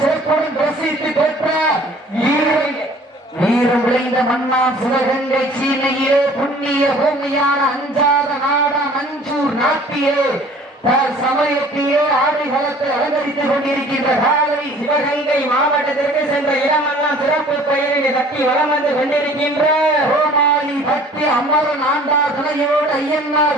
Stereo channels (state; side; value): normal; both; correlation 0.51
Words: சிறப்புடன் பிரசித்தி பெற்ற வீரம் விளைந்த மன்னா சிவகங்கை சீமையே புண்ணிய பூமியான அஞ்சாத நாடா மஞ்சூர் நாட்டியே சமயத்தையே ஆடிகளத்தை அலங்கரித்துக் கொண்டிருக்கின்ற காலை சிவகங்கை மாவட்டத்திற்கு சென்ற இடமெல்லாம் சிறப்பு பெயரினை தட்டி வளம் வந்து கொண்டிருக்கின்ற கோமாளி பக்தி அமரன் ஆண்டார் துணையோடு